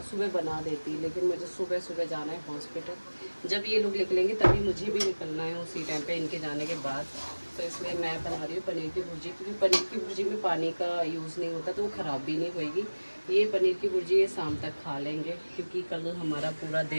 सुबह बना देती, लेकिन मुझे सुबह सुबह जाना है हॉस्पिटल। जब ये लोग निकलेंगे तभी मुझे भी निकलना है उसी टाइम पे, इनके जाने के बाद। तो इसलिए मैं बना रही हूँ पनीर की भुर्जी, क्योंकि पनीर की भुर्जी में पानी का यूज़ नहीं होता, तो वो ख़राब भी नहीं होएगी। ये पनीर की भुर्जी ये शाम तक खा लेंगे, क्योंकि कल हमारा पूरा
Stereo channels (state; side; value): inverted; both; correlation -1.00